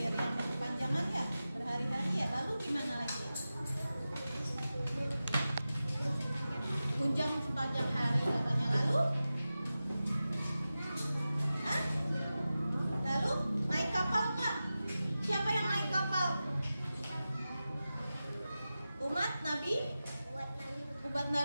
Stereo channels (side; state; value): both; inverted; correlation -0.94